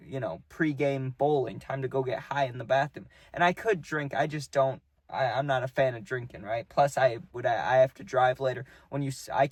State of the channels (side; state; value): both; identical; correlation 1.00